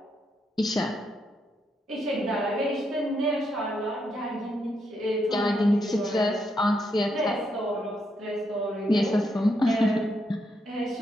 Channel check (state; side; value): normal; both; correlation 0.79